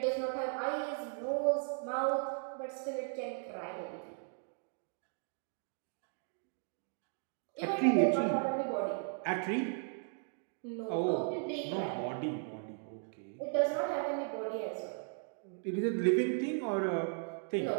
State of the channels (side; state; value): left; silent; 53 dB below the other